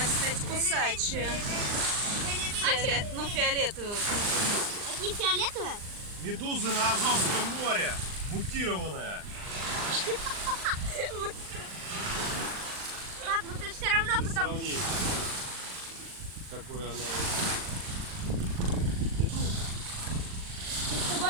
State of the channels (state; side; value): late; left; 39 ms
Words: кстати, кусачая. Ну, фиолетовая. Они фиолетовые? Медузы на Азовском море. Мутированная. Пап, ну ты все равно Для потом... сравнения. Какой она. Ты